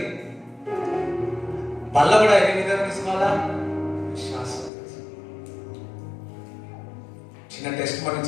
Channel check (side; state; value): right; drops out; at 4.7 s